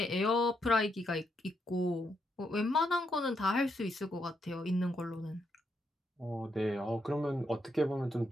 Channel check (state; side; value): normal; both; correlation 0.79